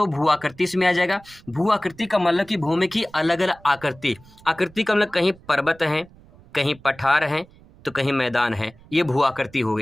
भू आकृति इसमें आ जाएगा। भू आकृति का मतलब कि भूमि की अलग अलग आकृति। आकृति का मतलब कहीं पर्वत है, कहीं पठार है, तो कहीं मैदान है, ये भू आकृति हो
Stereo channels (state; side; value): noise; right; rumble, 25 dB below the sound